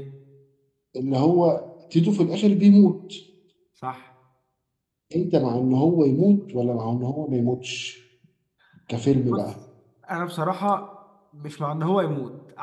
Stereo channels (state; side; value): identical; both; correlation 1.00